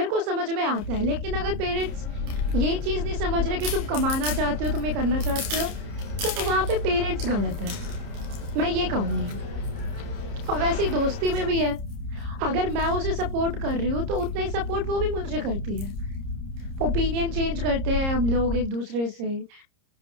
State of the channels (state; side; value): late; left; 30 ms